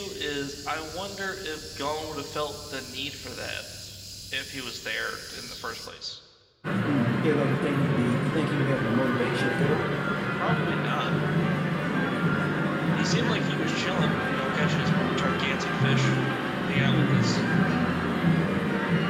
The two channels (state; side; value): identical; both; correlation 1.00